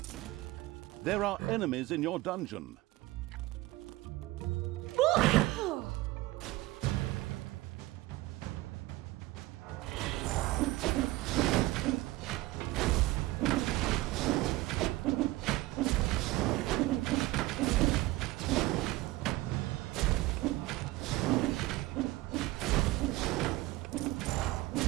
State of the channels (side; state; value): left; quieter; 18.9 dB